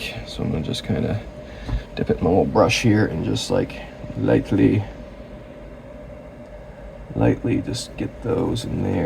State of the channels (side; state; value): both; identical; correlation 1.00